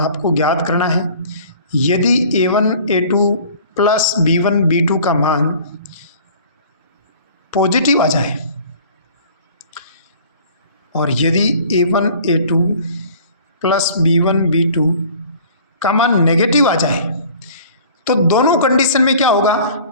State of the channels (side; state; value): both; inverted; correlation -0.49